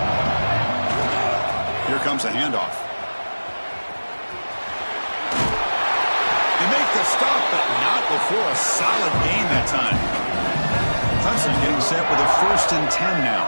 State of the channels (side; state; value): both; inverted; correlation -1.00